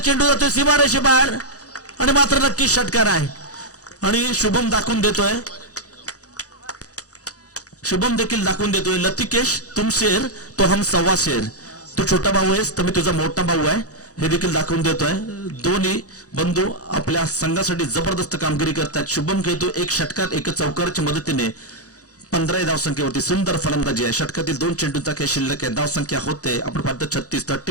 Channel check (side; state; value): right; late; 0.67 ms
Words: जातोय सीमारेषे बाहेर आणि मात्र नक्की षटकार आहे. आणि शुभम दाखवून देतोय, शुभम देखील दाखवून देतोय, लतिकेश तुम शेर तो हम सव्वा शेर, तू छोटा भाऊ आहेस तर मी तुझा मोठा भाऊ आहे, हे देखील दाखवून देतोय. दोन्ही बंधू आपल्या संघासाठी जबरदस्त कामगिरी करतात. शुभम खेळतो 1 षटकार 1 चौकाराच्या मदतीने 15 धावसंख्येवरती सुंदर फलंदाजी आहे. षटकातील 2 चेंडूंचा काही शिल्लक आहे. धावसंख्या होते आपण पाहतो